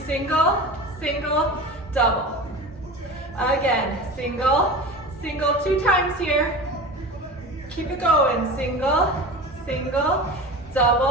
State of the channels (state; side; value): normal; both; correlation 0.32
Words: single, single, double. Again, single, single, 2 times here. Keep it going. Single, single,